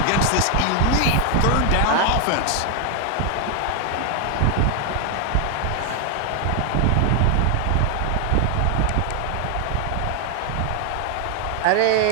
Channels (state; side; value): different; both; correlation 0.01